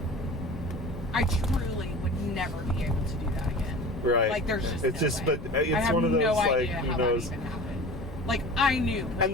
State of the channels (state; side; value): normal; both; correlation 0.38